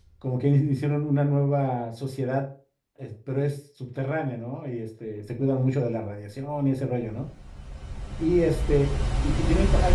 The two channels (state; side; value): identical; both; correlation 1.00